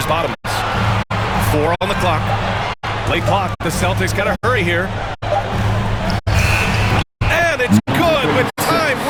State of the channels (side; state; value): both; identical; correlation 1.00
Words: Bottoms. 4 on the clock. Late clock. The Celtics got to hurry here. And it's good with time